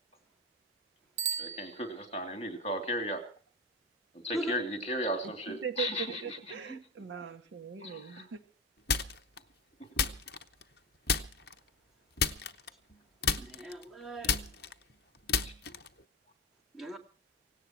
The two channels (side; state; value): both; normal; correlation 0.19